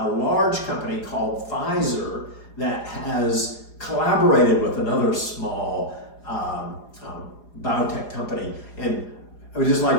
large company called Pfizer that has collaborated with another small biotech company. And I would just like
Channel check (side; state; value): right; late; 4.9 ms